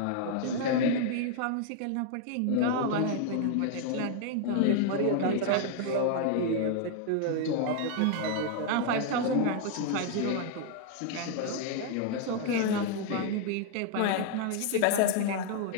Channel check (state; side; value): different; both; correlation 0.00